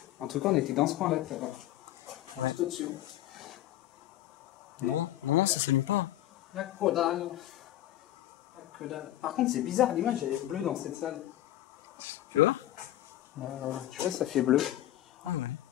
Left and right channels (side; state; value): right; quieter; 14.2 dB